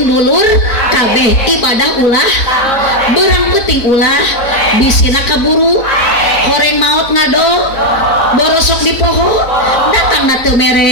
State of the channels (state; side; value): late; right; 4.0 ms